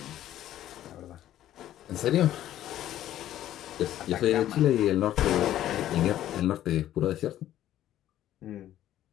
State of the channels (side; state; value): right; quieter; 12.6 dB